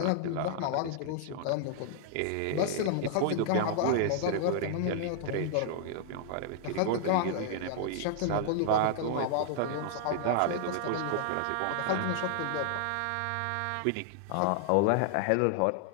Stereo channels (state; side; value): different; both; correlation -0.01